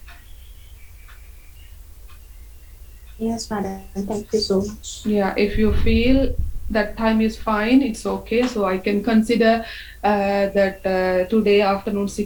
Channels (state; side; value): identical; both; correlation 1.00